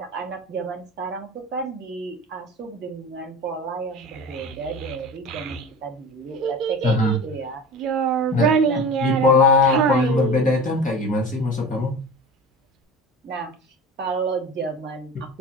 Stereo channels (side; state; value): both; normal; correlation 0.34